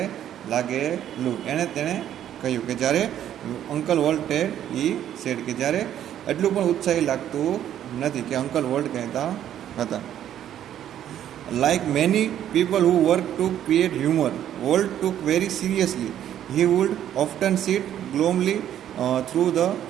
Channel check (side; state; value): left; quieter; 10.9 dB